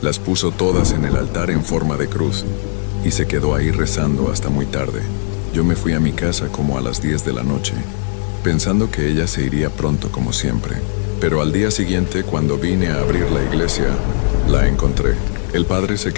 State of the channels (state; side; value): silent; right; digital silence